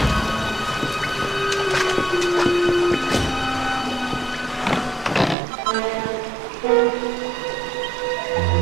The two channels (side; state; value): left; drops out; at 5.4 s